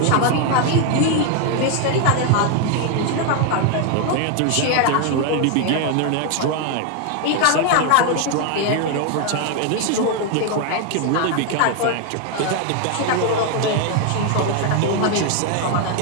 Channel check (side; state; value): both; different; correlation 0.01